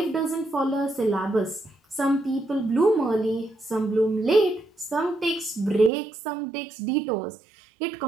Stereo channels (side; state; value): left; drops out; at 5.9 s